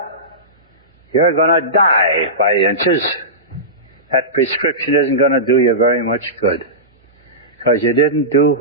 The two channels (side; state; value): both; normal; correlation -0.19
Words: You're going to die by inches. That prescription isn't going to do you very much good, because you didn't do